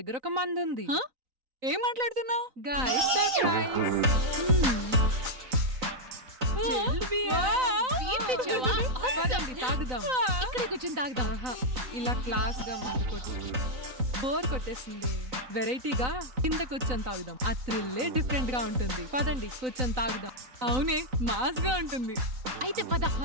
ఒక మందుంది. హ? ఏం మాట్లాడుతున్నావు? Guys surprise. పదండి తాగుదాం. ఇక్కడే కూర్చొని తాగుదాం. ఆహా, ఇలా క్లాస్ గా ముందు కొట్టి బోర్ కొట్టేసింది. వెరైటీగా కింద కూర్చొని తాగుదాం. ఆ థ్రిల్లే డిఫరెంట్ గా ఉంటుంది. పదండి కూర్చొని తాగుదాం. అవునే, మాస్ గా ఉంటుంది. అయితే పద.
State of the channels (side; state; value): left; late; 3.9 ms